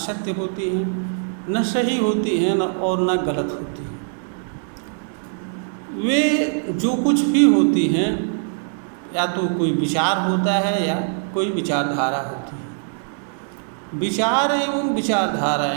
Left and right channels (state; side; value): silent; left; digital silence